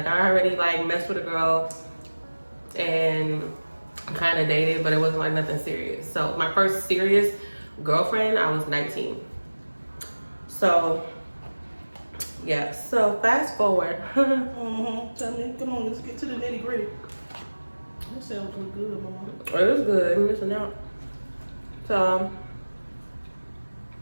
I already like messed with a girl and kind of dated, but it wasn't like nothing serious. So my first serious girlfriend, I was 19. So yeah, so fast forward. Tell me, come on, let's get to the nitty gritty. That sounds real good, mama. It was good. I'm missing out. So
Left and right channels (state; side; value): inverted; both; correlation -1.00